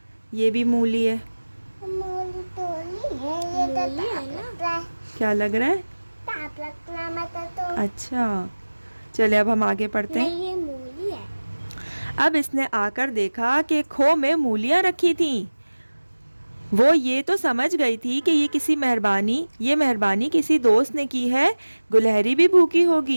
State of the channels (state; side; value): inverted; both; correlation -1.00